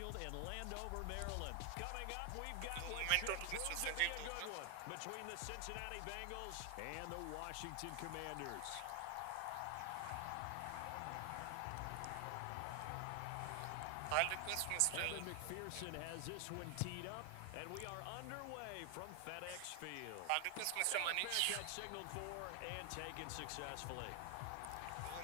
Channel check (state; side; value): different; both; correlation 0.00